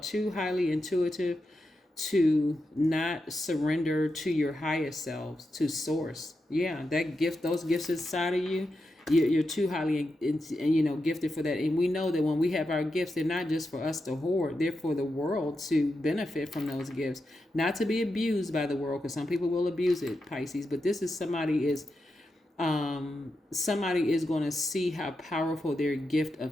highly intuitive to not surrender to your highest selves, to source. Yeah, that gift, those gifts inside of you, you're too highly gifted for that. And we know that when we have our gifts, they're not just for us to hoard, they're for the world to benefit from those gifts, not to be abused by the world, because some people will abuse it, Pisces. But this is somebody is Somebody is going to see how powerful their gift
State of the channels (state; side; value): normal; both; correlation 0.87